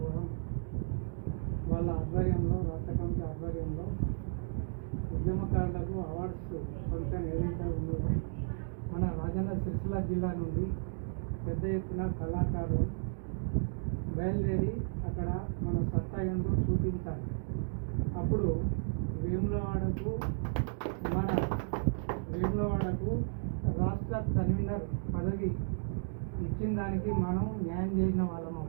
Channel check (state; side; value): silent; left; digital silence